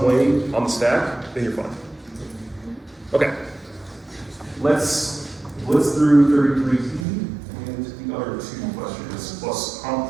way on the stack, then you're fine. Okay, let's blitz through 33 and the other two questions, plus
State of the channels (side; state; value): left; drops out; at 7.1 s